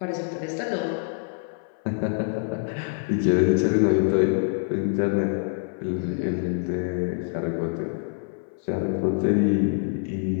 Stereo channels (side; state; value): right; silent; 57 dB below the other